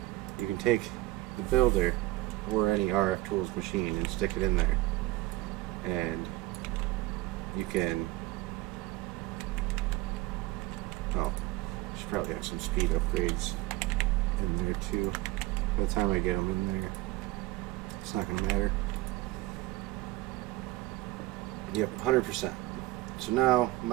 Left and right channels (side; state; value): left; quieter; 18.5 dB